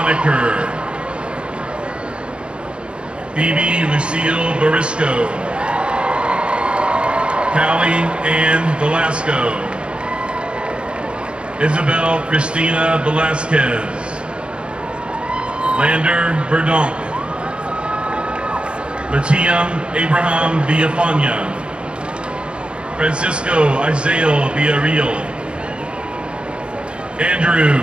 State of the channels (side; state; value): left; late; 0.054 ms